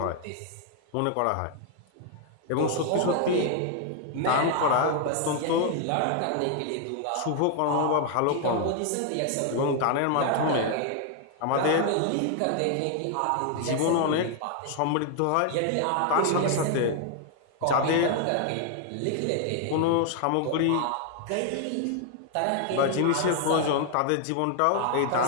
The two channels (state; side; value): different; both; correlation 0.00